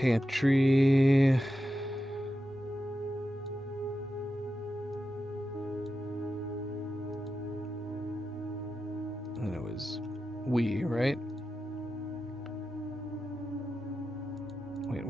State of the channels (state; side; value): normal; both; correlation 0.90